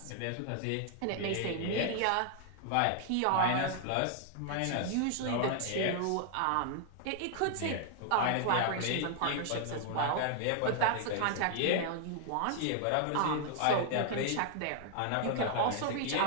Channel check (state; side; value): different; both; correlation 0.00